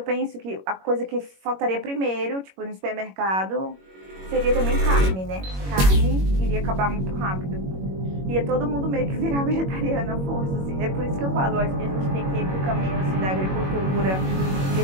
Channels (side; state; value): left; late; 21 ms